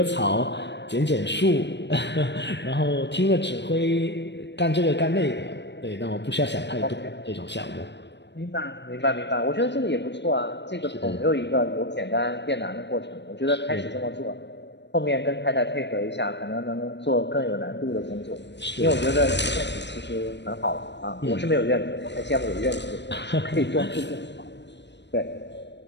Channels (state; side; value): late; right; 0.51 ms